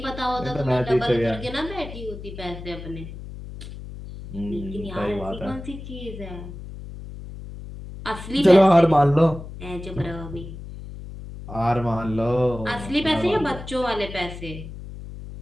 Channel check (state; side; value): noise; left; hum, 12 dB below the sound